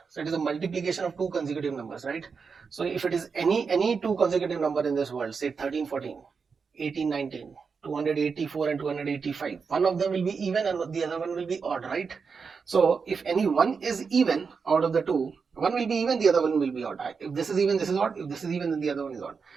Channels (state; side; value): quieter; left; 5.4 dB